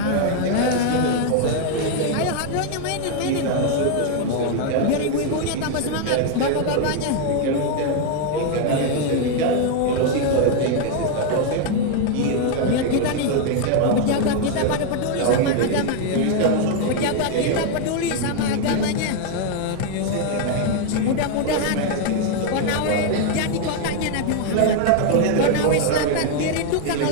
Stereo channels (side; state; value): both; different; correlation 0.00